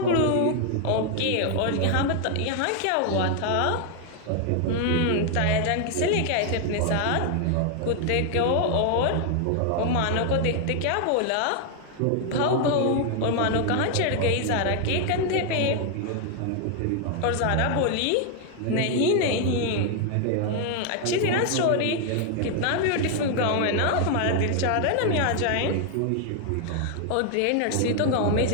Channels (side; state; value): both; different; correlation 0.00